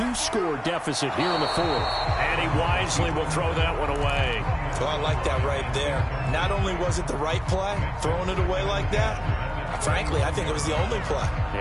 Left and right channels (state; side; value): identical; both; correlation 1.00